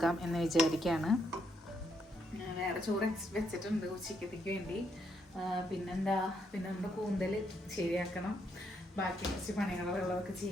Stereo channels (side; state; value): both; normal; correlation 0.76